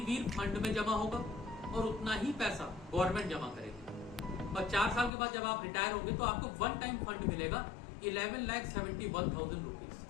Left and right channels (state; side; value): drops out; right; at 5.1 s